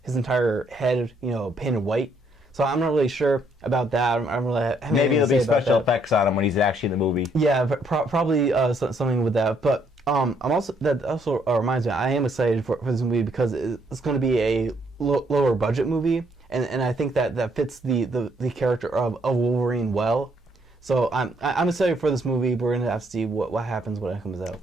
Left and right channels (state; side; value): normal; both; correlation 0.70